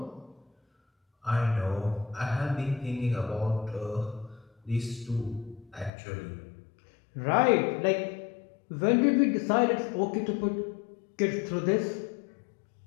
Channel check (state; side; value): drops out; right; at 5.9 s